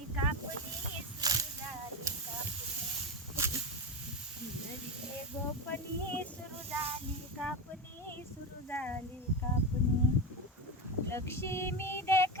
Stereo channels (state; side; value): normal; both; correlation 0.18